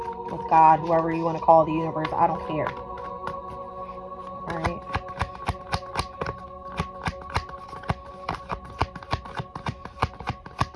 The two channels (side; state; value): both; identical; correlation 1.00